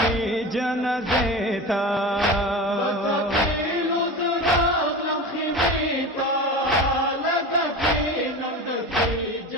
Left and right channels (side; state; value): both; normal; correlation 0.29